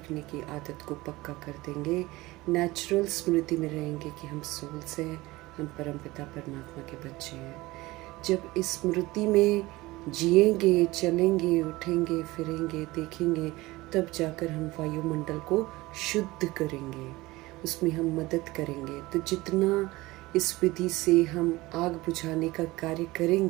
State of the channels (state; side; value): quieter; left; 20.1 dB